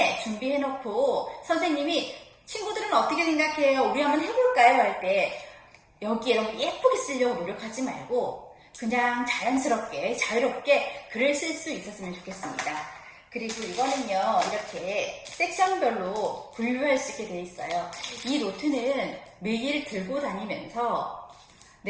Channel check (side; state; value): both; identical; correlation 1.00